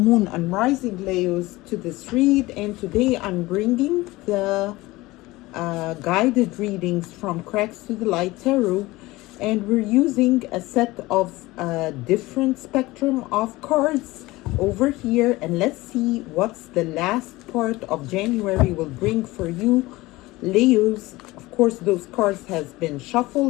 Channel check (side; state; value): right; quieter; 20.0 dB